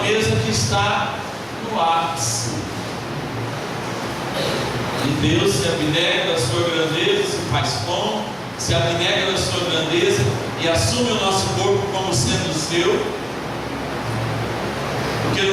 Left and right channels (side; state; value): both; identical; correlation 1.00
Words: mesa que está no ápice. E Deus se abnega da sua grandeza, se faz pão, se abnega da sua grandeza e assume o nosso corpo como sendo seu, porque